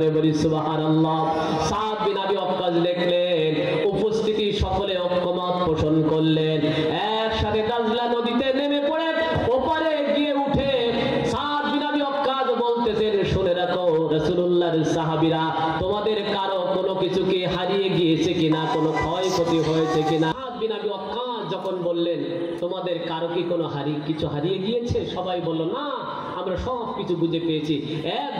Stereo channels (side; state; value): both; identical; correlation 1.00